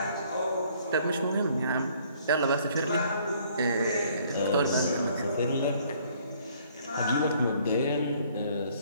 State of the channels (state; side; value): inverted; both; correlation -0.61